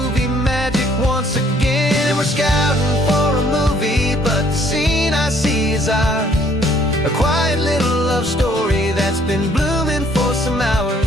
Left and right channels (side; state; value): both; normal; correlation 0.63